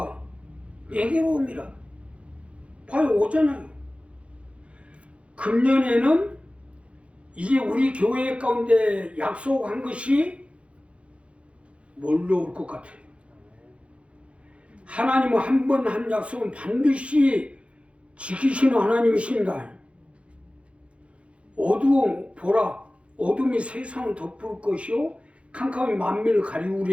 내게로 옵니다. 봐요, 오잖아요. 금년에는 이제 우리 교회 가운데 약속한 것이 뭘로 올 것 같아요? 하나님은 한 번 한 약속은 반드시 지키시는 하나님이십니다. 어두움 보라, 어둠이 세상을 덮을 것이요 캄캄이 만민을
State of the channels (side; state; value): left; late; 0.061 ms